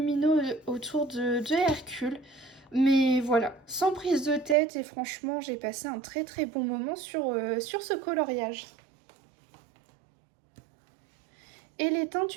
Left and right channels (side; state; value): left; drops out; at 4.5 s